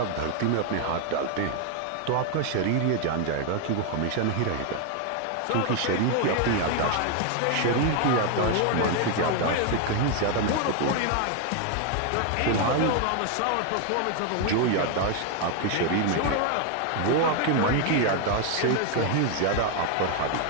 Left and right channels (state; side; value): different; both; correlation 0.01